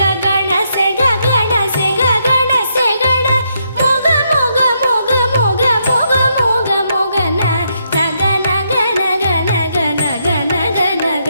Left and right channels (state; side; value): inverted; both; correlation -0.77